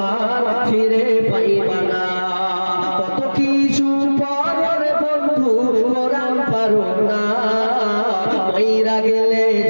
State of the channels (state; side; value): inverted; both; correlation -1.00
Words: ফিরে পাইবা না। কত কিছু পরের বন্ধু কোরআন পারো না, মইরা গেলে